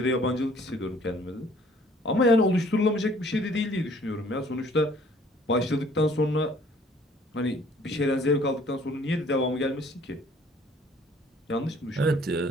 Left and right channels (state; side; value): normal; both; correlation 0.57